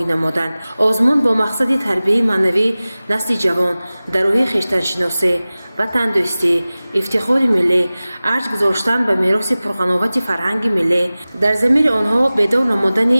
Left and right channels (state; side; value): inverted; both; correlation -0.98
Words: намуданд. Озмун бо мақсади тарбияи маънавии насли ҷавон дар роҳи хештаншиносӣ, ватандӯстӣ, ифтихори миллӣ, арҷ гузоштан ба мероси пурғановати фарҳанги миллӣ, дар замири онҳо бедор намудани